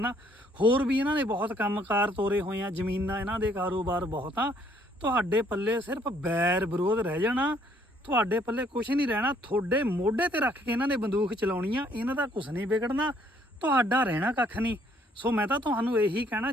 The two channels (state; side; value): normal; both; correlation 0.65